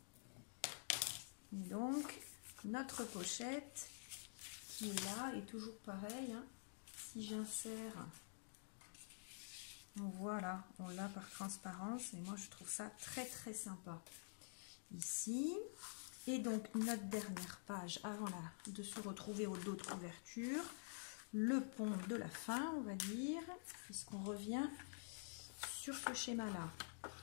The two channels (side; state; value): right; silent; digital silence